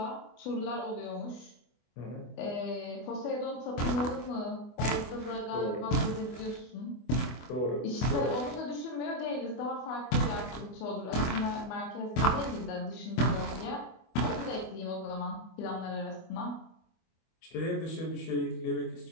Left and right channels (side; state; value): right; late; 24 ms